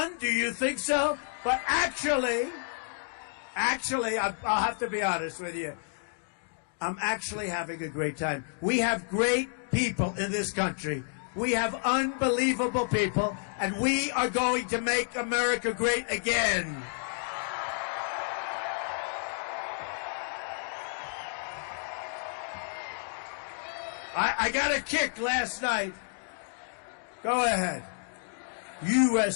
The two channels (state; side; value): silent; right; 58 dB below the other